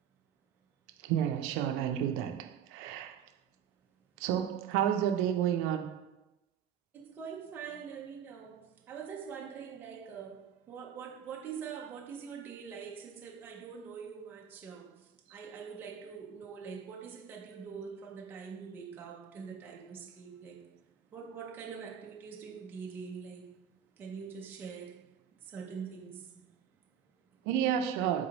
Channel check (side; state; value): left; quieter; 8.9 dB